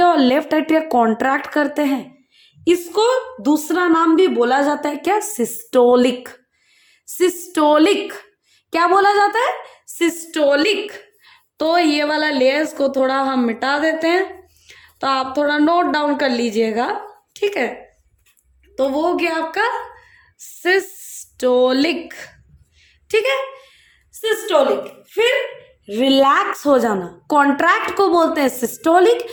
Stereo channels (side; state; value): both; identical; correlation 1.00